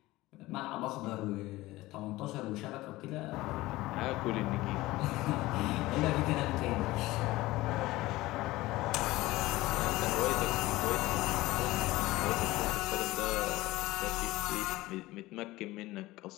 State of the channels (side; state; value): right; quieter; 18.6 dB